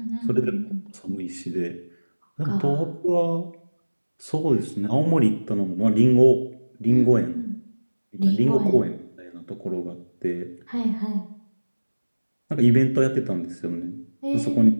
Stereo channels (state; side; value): inverted; both; correlation -1.00